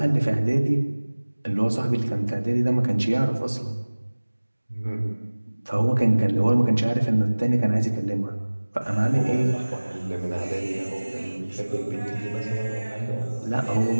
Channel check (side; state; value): both; inverted; correlation -1.00